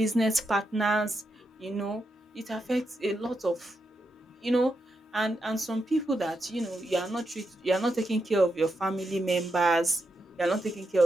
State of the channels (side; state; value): both; normal; correlation 0.84